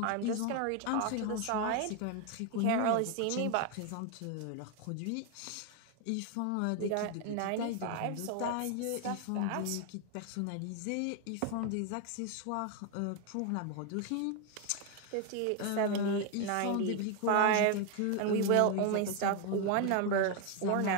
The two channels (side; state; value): both; different; correlation 0.01